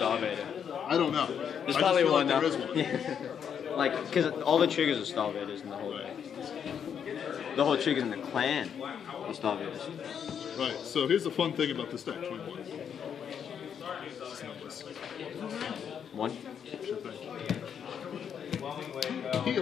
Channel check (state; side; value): quieter; right; 7.9 dB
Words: I don't know. There's probably one there now. is one. Like, because all the triggers are Starvaders in the whole thing. The whole triggers in the clan are Starvaders. Right, so here's the fun thing about this deck, 21. It's numbers. 1? Sure thing.